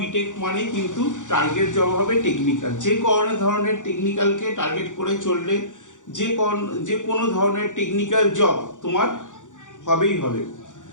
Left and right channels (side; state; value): right; late; 0.86 ms